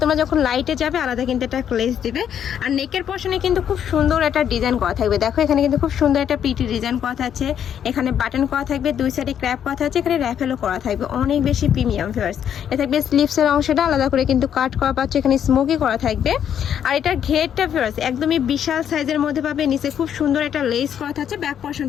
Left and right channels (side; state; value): right; quieter; 9.1 dB